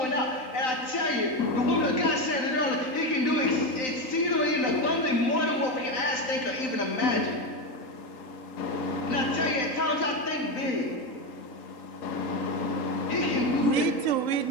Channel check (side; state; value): right; late; 3.8 ms